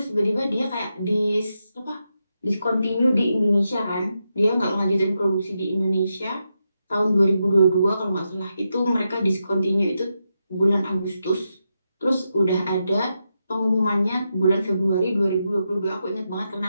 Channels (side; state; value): both; inverted; correlation -0.86